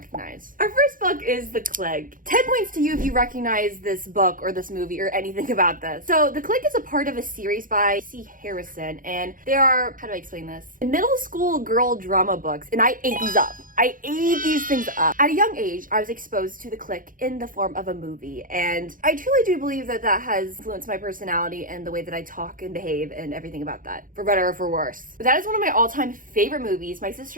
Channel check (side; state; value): left; late; 0.40 ms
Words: Our first book is The Clique. 10 points to you if you recognize this book or this movie or anything about this. So The Clique is a part of a series by C. Harrison, and they are, how do I explain this? Middle school girl drama books, and I ate these up. I ate these things up. At a young age, I was exposed to The Clique in the form of a movie, and I truly do believe that that has influenced my personality and the way that I talk and behave and everything about that, for better or for worse. But that is one of my all-time favorite movies. My